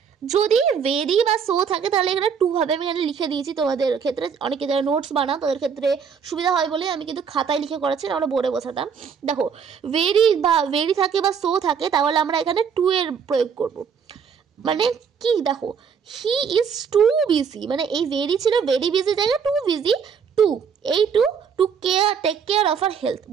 যদি ভেরি বা সো থাকে তাহলে এখানে টু হবে, আমি এখানে লিখে দিয়েছি। তোমাদের ক্ষেত্রে অনেকে যারা নোটস বানাও তাদের ক্ষেত্রে সুবিধা হয় বলে আমি কিন্তু খাতায় লিখে করাচ্ছি, আমরা বোর্ডে বোঝাতাম। দেখো ভেরি থাকে বা সো থাকে, তাহলে আমরা এখানে টু এর প্রয়োগ করব। মানে কি দেখো, হি ইজ টু বিজি, মানে এই ভেরি ছিল ভেরি বিজি জায়গায় টু বিজি, এই to take care of our health.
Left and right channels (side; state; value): left; quieter; 6.7 dB